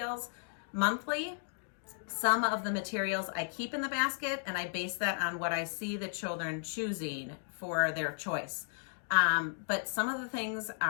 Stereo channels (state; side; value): silent; right; digital silence